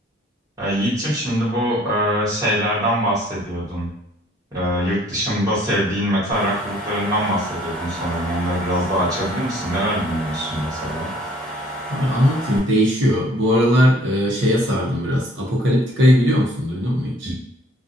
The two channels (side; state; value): both; normal; correlation 0.58